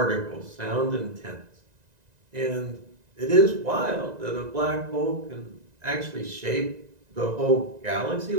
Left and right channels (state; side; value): late; left; 1.9 ms